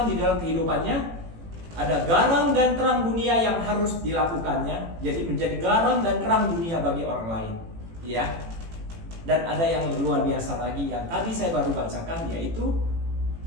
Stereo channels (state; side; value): late; left; 18 ms